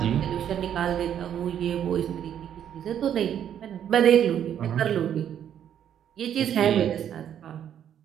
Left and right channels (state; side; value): quieter; left; 9.6 dB